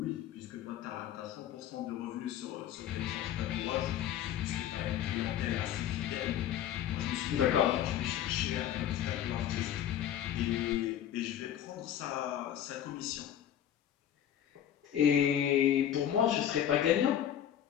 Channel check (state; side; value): quieter; right; 10.6 dB